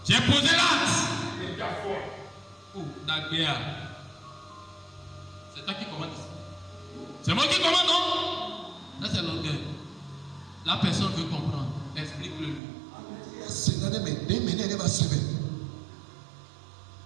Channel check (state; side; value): drops out; left; at 12.6 s